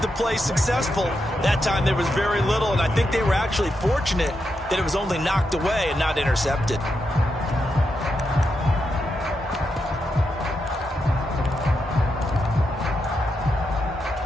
the play successful. That time there was very little, and I think they were actually fortunate that it was only knocked away and not intercepted.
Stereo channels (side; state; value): both; normal; correlation 0.84